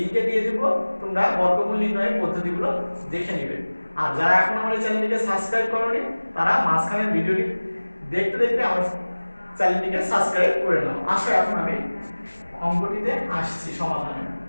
দিয়ে দেব। তোমরা বর্গমূল নির্ণয়ের পদ্ধতিগুলো দেখে নেবে। আর যারা এখন আমাদের চ্যানেলটিকে সাবস্ক্রাইব করোনি তারা মাঝখানের ভিডিওটি দেখতে দেখতে আমার চ্যানেলটিকে সাবস্ক্রাইব করে নাও। আসো এখন আমি অঙ্কটিতে আসছি সমাধানে।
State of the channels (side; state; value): both; inverted; correlation -1.00